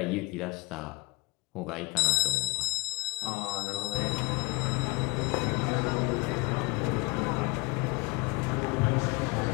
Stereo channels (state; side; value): quieter; right; 26.3 dB